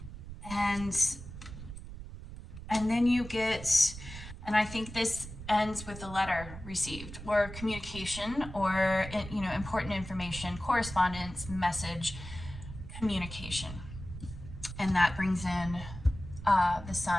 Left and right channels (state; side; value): noise; right; rumble, 12 dB below the sound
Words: And then you get, and I think this ends with a letter received or communication or, you know, important information, correspondence, message, communication. And that brings in the